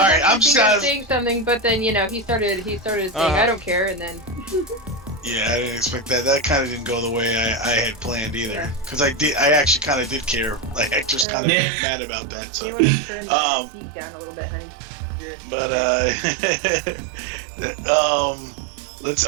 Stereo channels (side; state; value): left; drops out; at 11.2 s